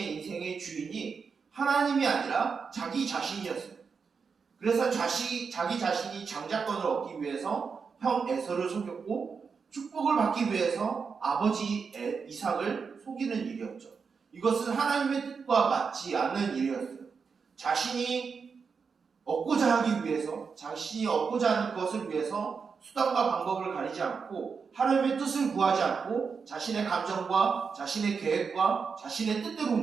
인생의 주인이 하나님이 아니라 자기 자신이었어요. 그래서 자기 자신이 장자권을 얻기 위해서 형 에서를 속였고, 축복을 받기 위해서 아버지 이삭을 속이는 일이었죠. 이것은 하나님의 뜻과 맞지 않는 일이었어요. 자신이 얻고자 하기 위해서, 자신이 얻고자 하는 것을 위해서 수단과 방법을 가리지 않고 하나님의 뜻을 구하지 않고 자신의 감정과 자신의 계획과 자신의 뜻대로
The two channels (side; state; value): left; quieter; 5.6 dB